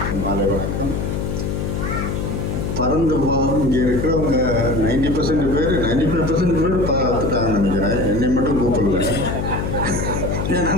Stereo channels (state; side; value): noise; left; hum, 2 dB below the sound